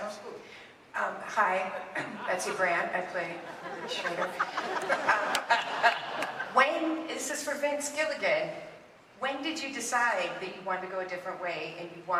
absolutely. Hi, Betsy Brandt. I play Schrader. This is for Vince Gilligan. When did you decide that you wanted to go a different way and you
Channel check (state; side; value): identical; both; correlation 1.00